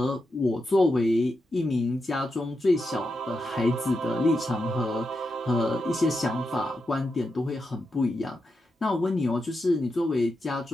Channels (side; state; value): both; normal; correlation 0.87